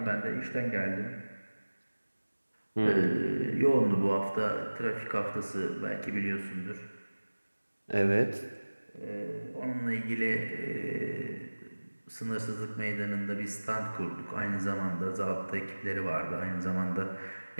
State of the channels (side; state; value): both; inverted; correlation -1.00